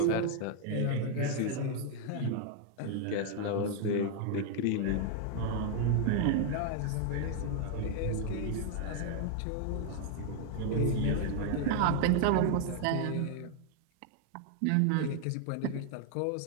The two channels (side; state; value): both; different; correlation 0.00